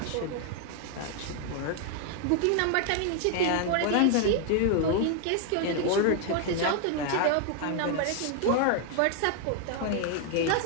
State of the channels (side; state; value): both; different; correlation 0.00